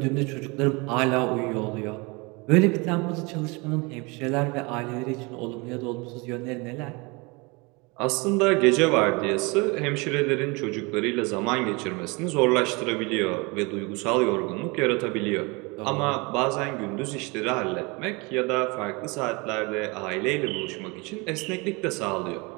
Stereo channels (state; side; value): quieter; left; 27.4 dB